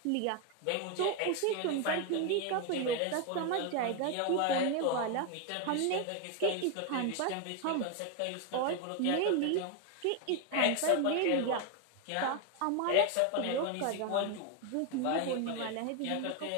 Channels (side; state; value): both; different; correlation 0.01